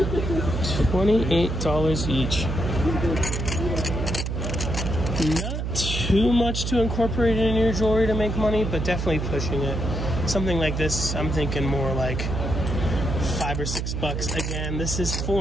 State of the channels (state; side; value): noise; right; hum, 2 dB below the sound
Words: each. Not too much to incorporate in your jewelry to make money, but definitely pushing it. Something like this, I'm thinking more like $5 or $6. Again, this is